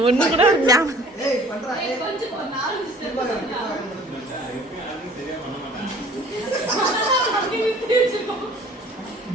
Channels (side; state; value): both; normal; correlation 0.51